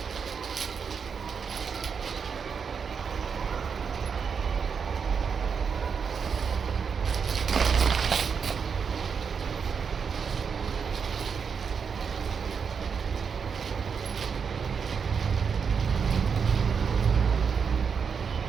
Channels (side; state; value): left; quieter; 6.2 dB